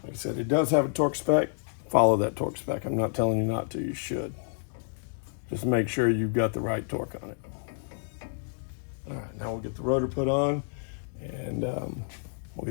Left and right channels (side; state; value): right; silent; digital silence